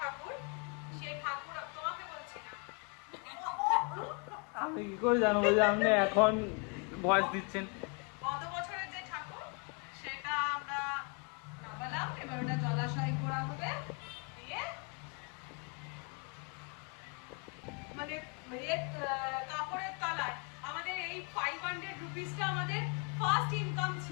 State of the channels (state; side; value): quieter; right; 33.8 dB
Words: সেই ঠাকুর তোমাকে বলছি না, আমি কি করে জানবো যে আপনি এখন ভয়েস দিচ্ছেন? গত বছরের যে ঠাকুর সেটা আমরা নামালাম, এবার ওটা জলাশয় করা হবে দিয়ে মানে কাপড়ের তলায় আমাদের এই 500 রুপিসটা আমাদের ফার্স্ট ইনকাম